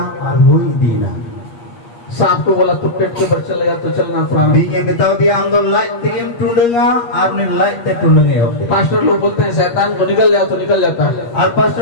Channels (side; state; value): right; late; 8.5 ms